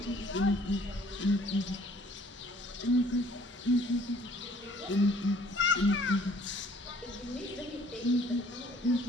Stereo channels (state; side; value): normal; both; correlation 0.57